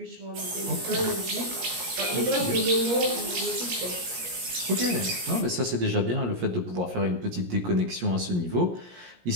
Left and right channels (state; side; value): late; left; 17 ms